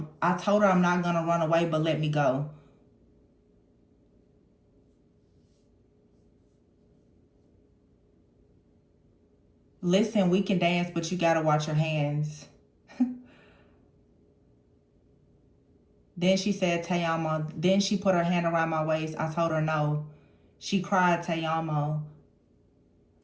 told her I'm not gonna run away, but let me go. Listen, we can dance, but you gotta watch your hands. Then she said, Tayama. Then she put her hand around my waist. I told her no. She cried, Tayama.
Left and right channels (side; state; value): both; identical; correlation 1.00